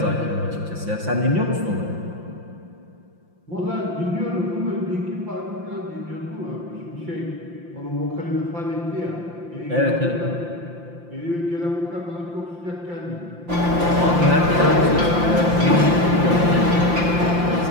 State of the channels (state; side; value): late; left; 5.8 ms